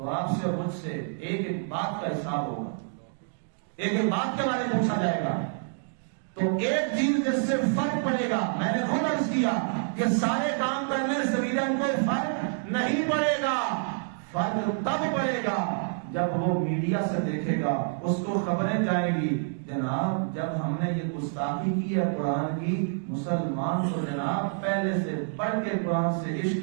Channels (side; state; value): left; silent; digital silence